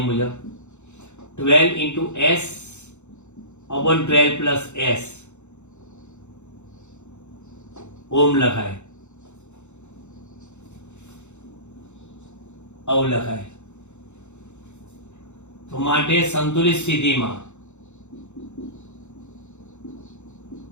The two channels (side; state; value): right; late; 0.83 ms